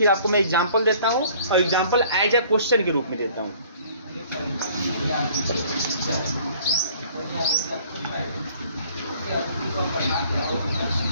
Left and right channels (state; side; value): inverted; both; correlation -0.55